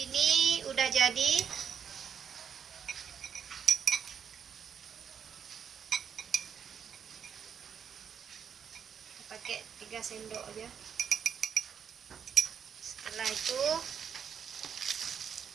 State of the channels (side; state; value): left; quieter; 7.4 dB